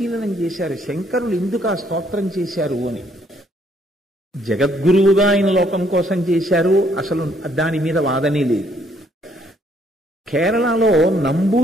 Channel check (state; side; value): normal; both; correlation 0.67